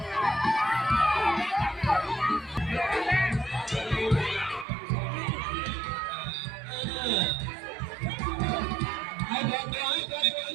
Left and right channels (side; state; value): left; drops out; at 4.7 s